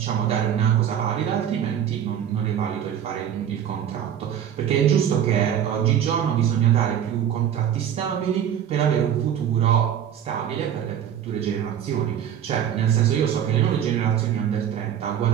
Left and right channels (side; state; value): left; quieter; 9.5 dB